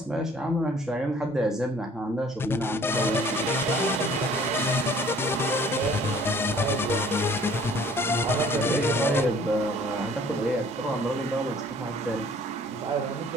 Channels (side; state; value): both; normal; correlation 0.55